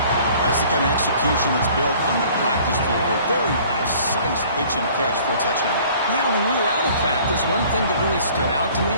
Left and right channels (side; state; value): both; inverted; correlation -0.52